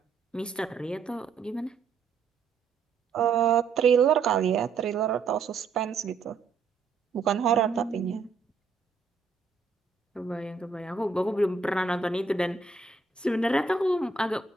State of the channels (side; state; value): left; quieter; 4.9 dB